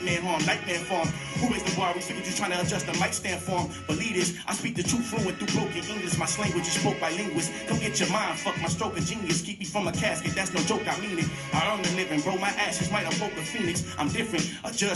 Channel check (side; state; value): both; identical; correlation 1.00